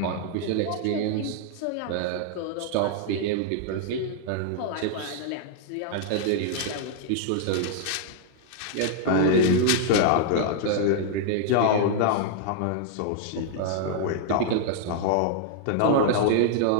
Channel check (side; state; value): both; different; correlation -0.01